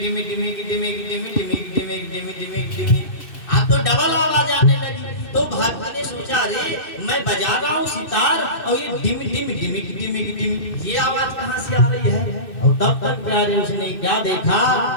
डिमी डिमी डिमी डिमी डिमी डिमी डिमी डिमी, आप तो डबल आवाज आने लगी। तो भक्त ने सोचा अरे मैं बजा रहा हूँ सितार और ये डिमी डिमी डिमी डिमी डिमी, ये आवाज कहाँ से आ रही है। और तब तक प्यारे उसने क्या देखा,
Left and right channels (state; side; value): late; right; 2.6 ms